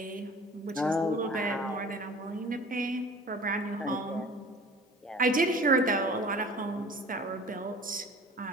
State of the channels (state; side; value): normal; both; correlation 0.43